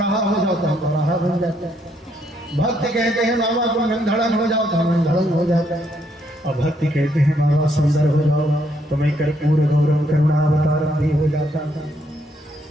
हो जाओ तो हम बौराहा बन जाते हैं। भक्त कहते हैं बाबा तुम नंधड़न हो जाओ तो हम नंधड़न हो जाते हैं। और भक्त कहते हैं बाबा सुंदर हो जाओ तो मैं कर्पूर गौरव करुणा अवतारम भी हो जाता था।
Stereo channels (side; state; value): both; normal; correlation 0.73